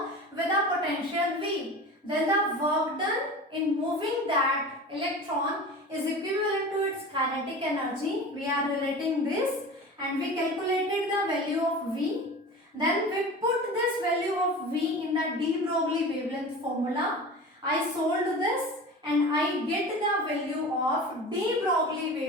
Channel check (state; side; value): normal; both; correlation 0.34